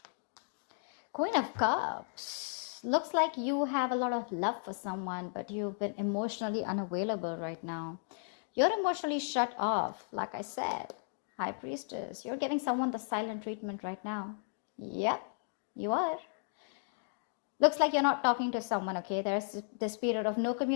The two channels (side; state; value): right; silent; digital silence